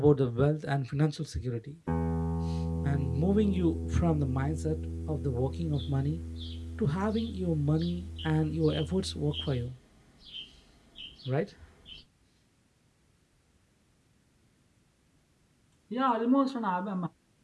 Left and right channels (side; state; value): both; identical; correlation 1.00